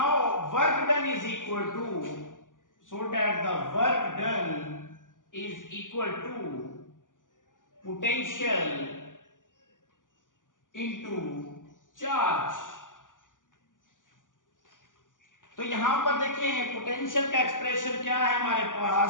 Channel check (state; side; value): late; right; 0.88 ms